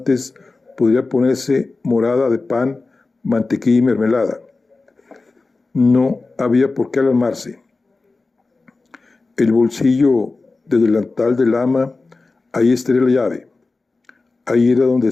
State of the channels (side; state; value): right; quieter; 3.7 dB